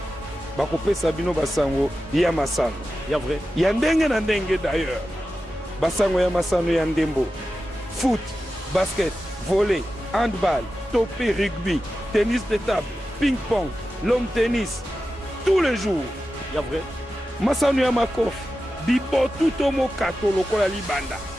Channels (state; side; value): normal; both; correlation 0.92